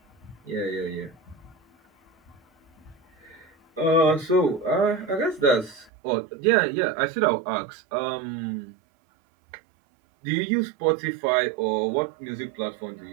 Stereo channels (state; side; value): drops out; left; at 5.9 s